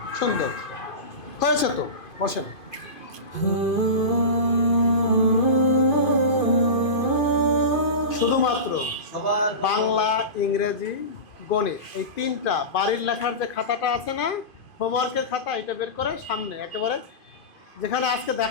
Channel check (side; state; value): right; late; 2.5 ms